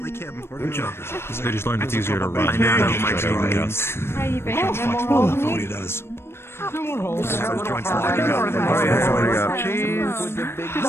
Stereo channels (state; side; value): late; right; 0.12 ms